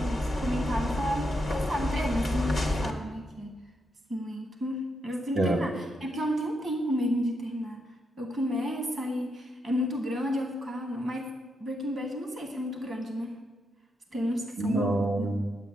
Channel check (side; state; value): both; normal; correlation 0.81